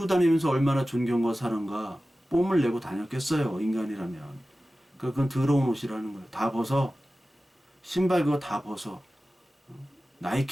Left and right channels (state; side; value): normal; both; correlation 0.95